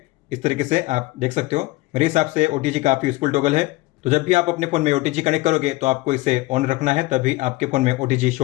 इस तरीके से आप देख सकते हो। मेरे हिसाब से OTG काफ़ी यूजफुल टॉगल है। तो जब भी आप अपने फ़ोन में OTG कनेक्ट करोगे तो आपको इसे ऑन रखना है, तभी आपके फ़ोन में OTG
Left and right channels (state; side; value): quieter; right; 20.7 dB